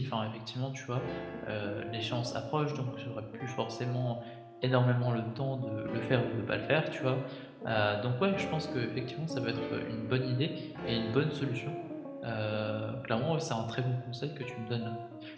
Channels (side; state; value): both; identical; correlation 1.00